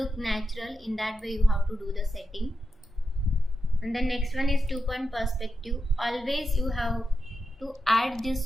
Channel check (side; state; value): both; normal; correlation 0.89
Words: natural. In that way you have to do the setting. And the next one is 2-point perspective. Always you have to add